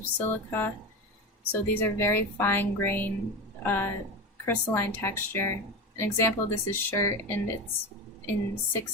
silica, so these are very fine grain, crystalline texture. An example of this is shirt, and it's in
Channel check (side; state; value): both; normal; correlation 0.22